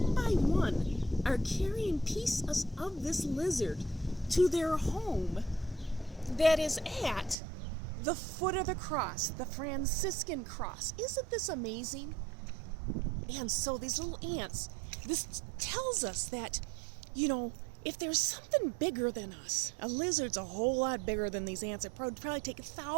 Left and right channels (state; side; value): drops out; left; at 7.4 s